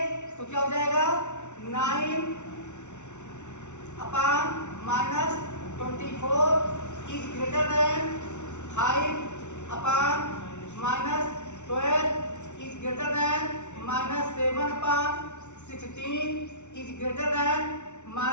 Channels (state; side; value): late; right; 0.83 ms